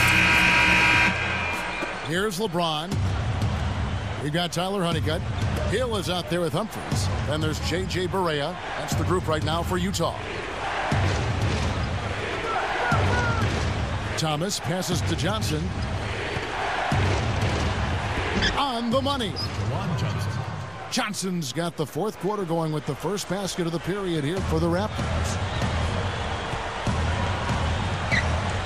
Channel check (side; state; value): both; identical; correlation 1.00